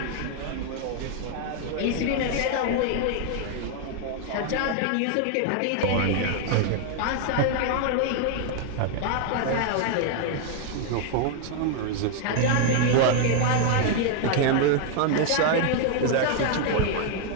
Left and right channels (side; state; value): both; different; correlation 0.00